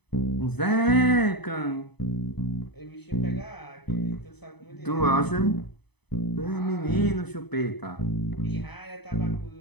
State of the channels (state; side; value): late; right; 0.99 ms